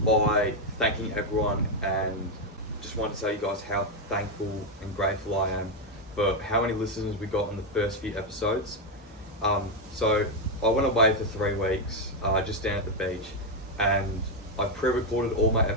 by thanking everyone, and just want to tell you guys how thankful and grateful I am for how many listeners we got in the first few episodes. So I went away for 3 weeks, just down at the beach, and I pre-recorded all my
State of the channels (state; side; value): normal; both; correlation 0.04